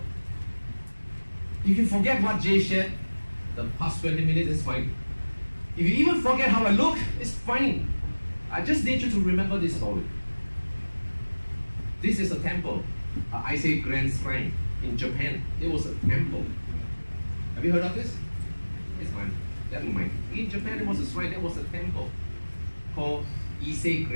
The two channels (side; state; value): both; inverted; correlation -1.00